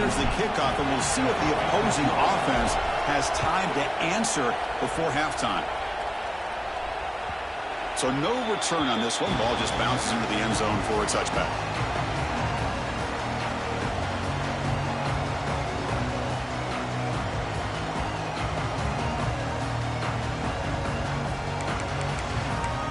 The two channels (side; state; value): both; identical; correlation 1.00